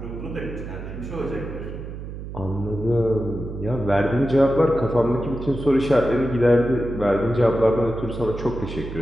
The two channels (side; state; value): right; noise; hum, 9 dB below the sound